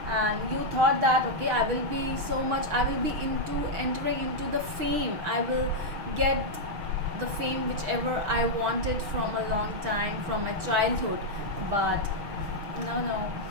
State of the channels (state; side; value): late; left; 6.4 ms